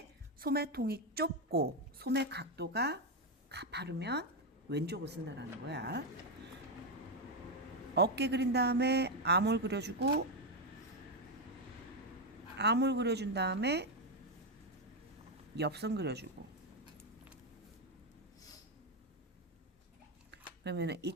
소매통이 좁고 소매 각도가 가파르면 왼쪽을 쓴다라는 거야. 어깨 그린 다음에 아몰 그려주고, 아몰 그려준 다음에 옆선 그려주고. 그러면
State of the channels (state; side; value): normal; both; correlation 0.06